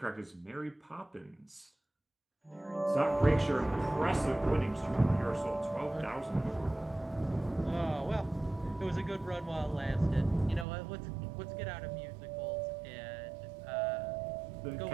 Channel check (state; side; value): drops out; left; at 10.7 s